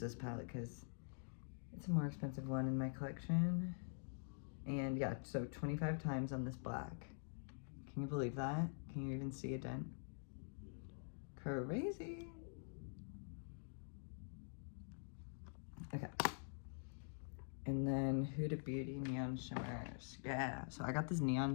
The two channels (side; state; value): right; silent; digital silence